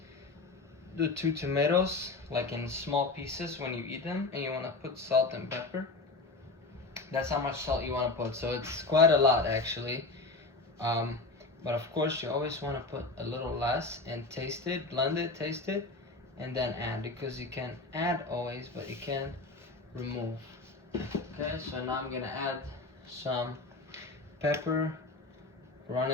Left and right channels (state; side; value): quieter; right; 3.4 dB